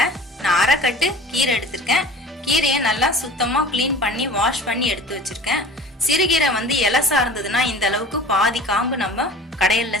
நான் அரை கட்டு கீரை எடுத்திருக்கேன். கீரையை நல்லா சுத்தமா கிளீன் பண்ணி வாஷ் பண்ணி எடுத்து வச்சிருக்கேன். சிறுகீரை இலசா இருந்ததுன்னா இந்த அளவுக்கு பாதி காம்பு நம்ம கடையல்ல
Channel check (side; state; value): both; normal; correlation 0.42